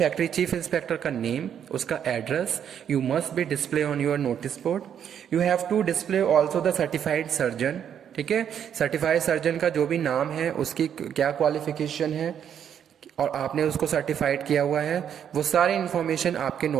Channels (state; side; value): quieter; left; 8.8 dB